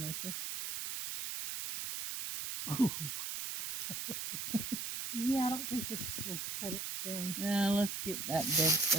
Oh. Yeah, I don't think this will cut it down. Let's get that dead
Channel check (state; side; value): noise; right; hiss, 3 dB below the sound